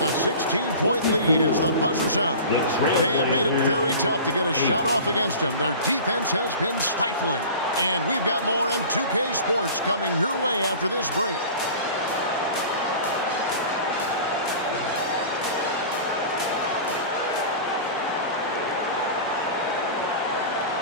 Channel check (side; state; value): both; inverted; correlation -0.38